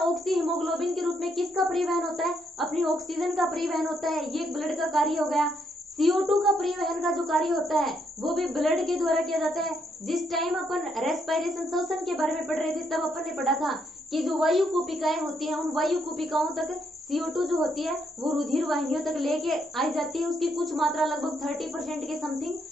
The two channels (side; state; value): both; normal; correlation 0.75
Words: हीमोग्लोबिन के रूप में किसका परिवहन होता है? अपनी ऑक्सीजन का परिवहन होता है। ये ब्लड का कार्य हो गया। CO2 का परिवहन का जो कार्य होता है वो भी ब्लड के द्वारा किया जाता है। जिस टाइम अपन रेस्पिरेशन, श्वसन के बारे में पढ़ रहे थे तब अपन ने पढ़ा था कि जो वायु कूपिकाएं होती हैं उन वायु कूपिकाओं तक CO2 जो होती है वो रुधिर वाहिनियों तक लेके आई जाती है। उसकी कुछ मात्रा लगभग 30% के समथिंग।